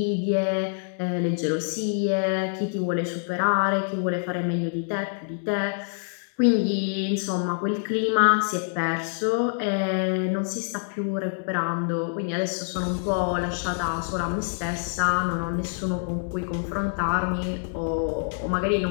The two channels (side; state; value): right; silent; digital silence